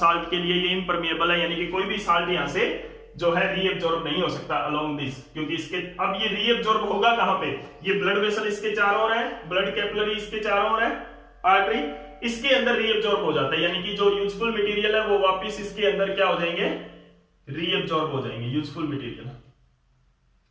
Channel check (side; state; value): both; identical; correlation 1.00